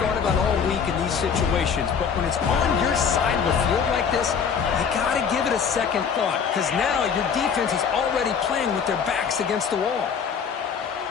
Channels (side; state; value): right; quieter; 6.7 dB